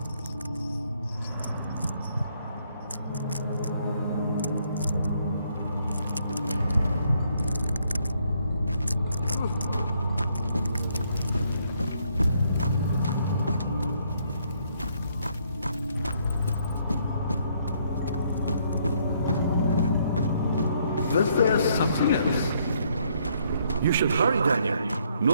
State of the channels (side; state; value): both; inverted; correlation -0.70